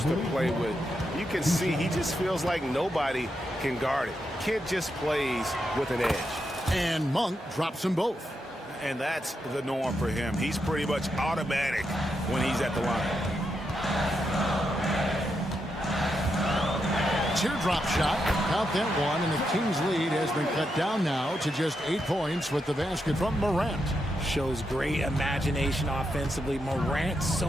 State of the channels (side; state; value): both; normal; correlation 0.84